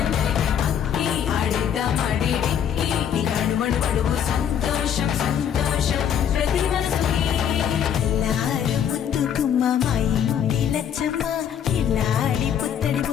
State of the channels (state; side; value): quieter; right; 8.9 dB